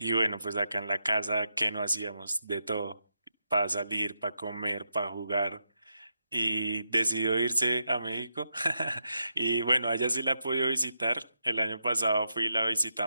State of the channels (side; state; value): both; inverted; correlation -0.84